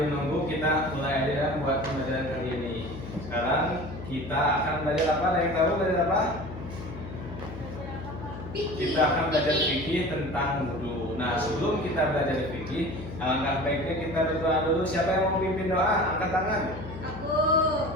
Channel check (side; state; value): left; noise; hum, 11 dB below the sound